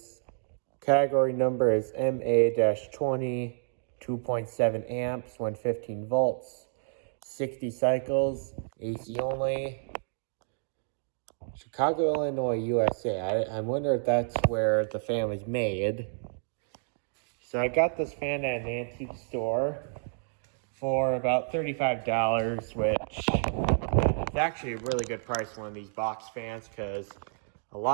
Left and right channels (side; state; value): left; silent; digital silence